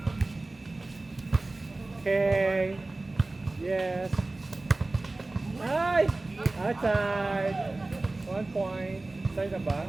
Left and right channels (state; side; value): quieter; left; 3.1 dB